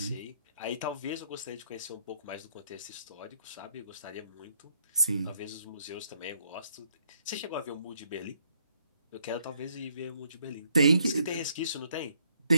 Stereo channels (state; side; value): inverted; both; correlation -0.71